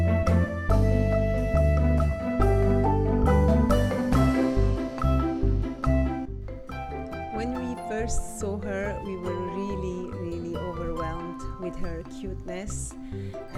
When we first saw her, we were really overwhelmed with her cuteness,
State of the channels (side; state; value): both; identical; correlation 1.00